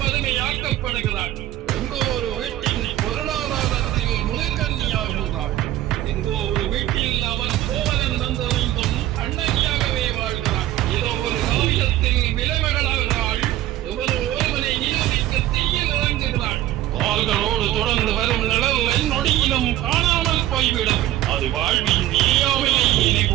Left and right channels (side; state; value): left; quieter; 14.1 dB